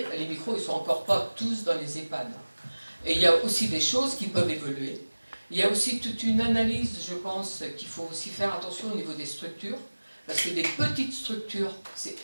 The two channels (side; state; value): both; inverted; correlation -1.00